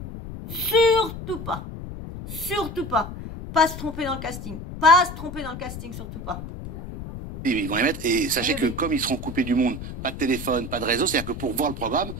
Surtout pas. Pas se tromper dans le casting. Surtout pas. Et ils vont les mettre. Et sachez que comme ils seront coupés du monde, pas de téléphone, pas de réseau, c'est-à-dire que pour voir le programme,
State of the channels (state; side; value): noise; left; rumble, 9 dB below the sound